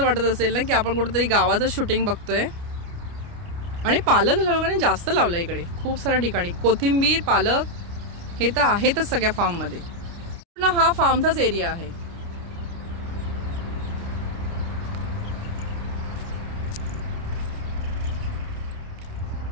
वाटत असेल ना की आपण कुठेतरी गावाचं शूटिंग बघतोय. आणि पालक लोकांनी जास्त लावलं इकडे, खूप साऱ्या ठिकाणी. कोथिंबीर, पालक हे तर आहेतच सगळ्या फार्ममध्ये. पूर्ण हा फार्मचाच एरिया आहे.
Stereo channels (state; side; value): late; left; 29 ms